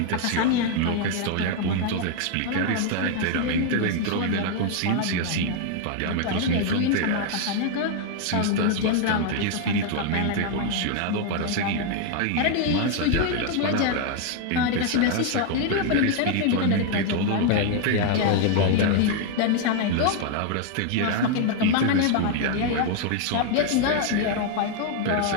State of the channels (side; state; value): both; different; correlation 0.00